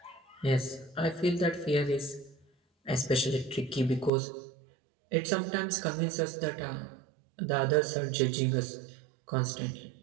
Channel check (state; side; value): drops out; left; at 4.1 s